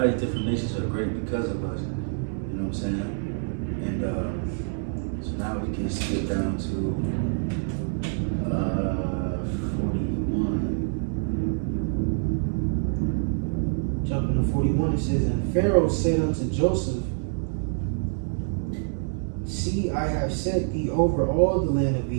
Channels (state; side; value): silent; left; digital silence